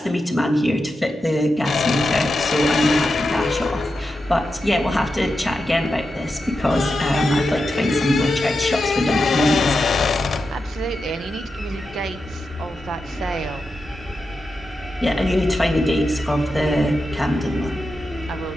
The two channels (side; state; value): both; normal; correlation 0.89